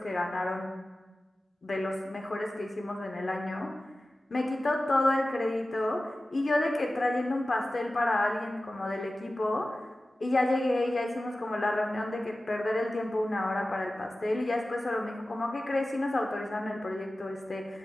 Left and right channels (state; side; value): normal; both; correlation 0.96